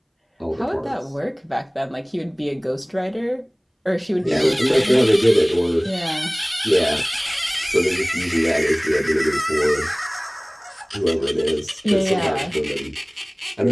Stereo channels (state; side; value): identical; both; correlation 1.00